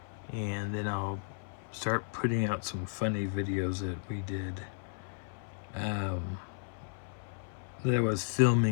and then I'll start putting out some funny videos that we did that I was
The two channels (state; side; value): silent; right; 55 dB below the other